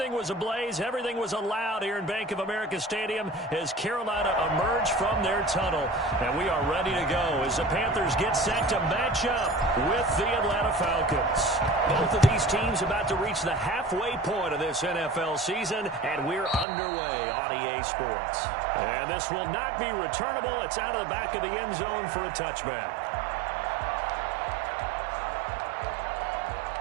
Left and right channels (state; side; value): drops out; left; at 16.7 s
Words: was ablaze, everything was allowed here in Bank of America Stadium as Carolina emerged from their tunnel. And we are ready to go as the Panthers get set to match up with the Atlanta Falcons. Both of these teams about to reach the halfway point of this NFL season, and we're underway on EA Sports. And this will not be returnable. It's out of the back of the end zone for a touchback.